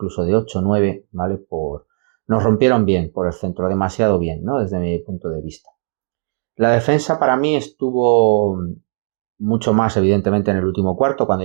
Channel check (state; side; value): silent; left; 64 dB below the other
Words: de 8 o 9, ¿vale? Nos rompieron bien por el centro, demasiado bien, ¿no? Desde mi punto de vista. La defensa para mí estuvo mucho más evidentemente en el último cuarto, cuando